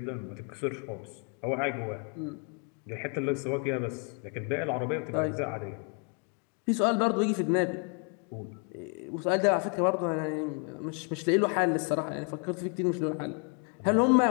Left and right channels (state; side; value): quieter; right; 37.3 dB